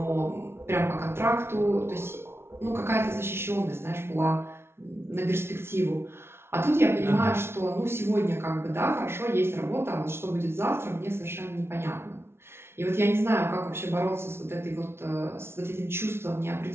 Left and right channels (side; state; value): left; late; 0.12 ms